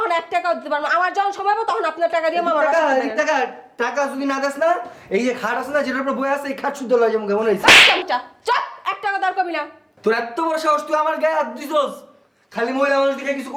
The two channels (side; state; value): both; identical; correlation 1.00